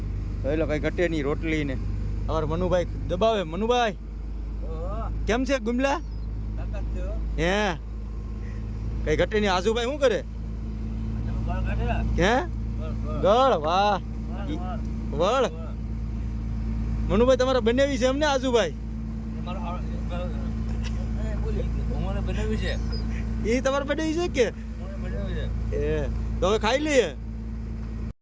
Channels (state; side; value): identical; both; correlation 1.00